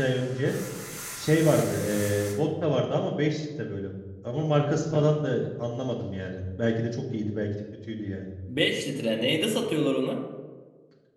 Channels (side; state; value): both; identical; correlation 1.00